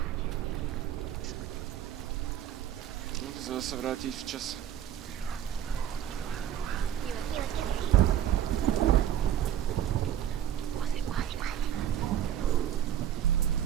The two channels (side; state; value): left; quieter; 10.4 dB